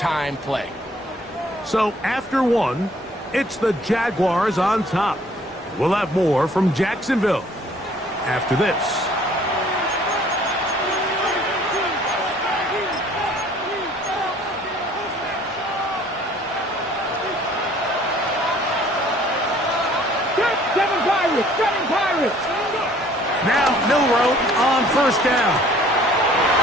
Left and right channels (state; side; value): normal; both; correlation 0.57